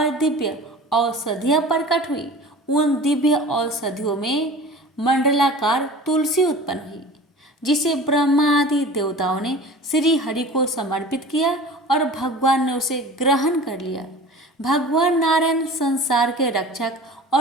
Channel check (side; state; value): both; normal; correlation 0.39